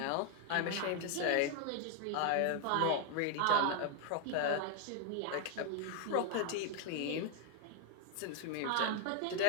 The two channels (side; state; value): both; different; correlation 0.00